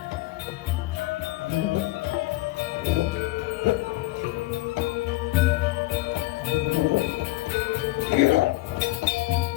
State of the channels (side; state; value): right; quieter; 19.2 dB